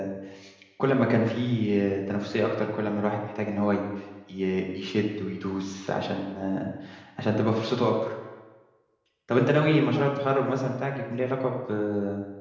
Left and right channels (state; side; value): identical; both; correlation 1.00